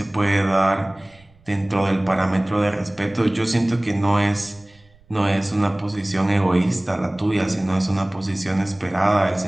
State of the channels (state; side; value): noise; right; rumble, 29 dB below the sound